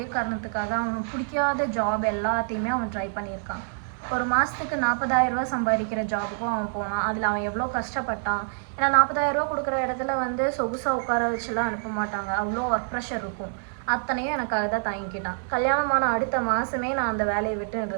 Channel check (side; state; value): left; silent; 61 dB below the other